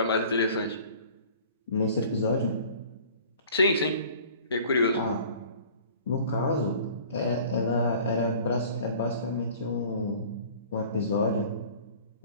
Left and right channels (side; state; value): both; inverted; correlation -0.48